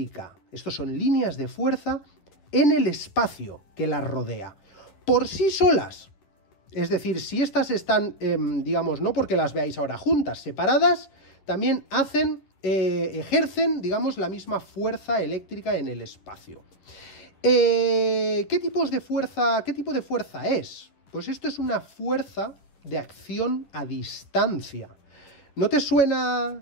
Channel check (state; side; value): late; right; 10 ms